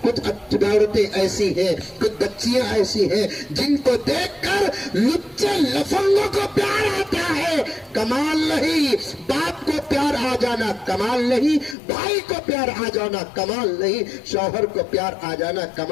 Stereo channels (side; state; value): right; drops out; at 11.8 s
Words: کچھ عورتیں ایسی ہیں، کچھ بچیاں ایسی ہیں جن کو دیکھ کر لچے لفنگوں کو پیار آتا ہے، کمال نہیں۔ باپ کو پیار آ جانا کمال نہیں، بھائی کو پیار آ جانا کمال نہیں، شوہر کو پیار آ جانا